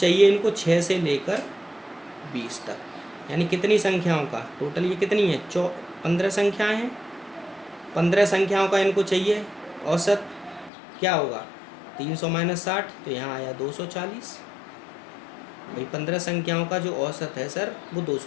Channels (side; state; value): right; drops out; at 10.7 s